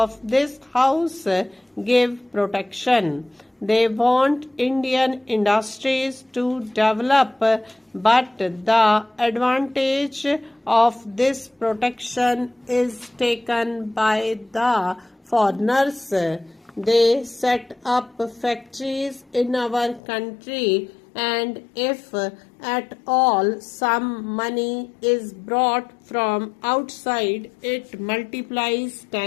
this house give protection. They want Indian industries to develop, but the advantage of this protection is taken by the foreigners. They set up factories in our country, and if at all some money is brought from outside, it multiplies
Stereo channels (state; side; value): drops out; right; at 20.0 s